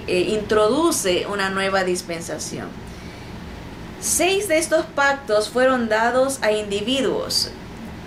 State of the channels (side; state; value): both; identical; correlation 1.00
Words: introduce una nueva dispensación. 6 de estos pactos fueron dados a individuos